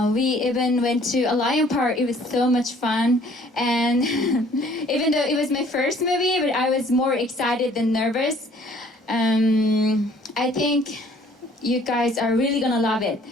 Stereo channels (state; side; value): normal; both; correlation 0.57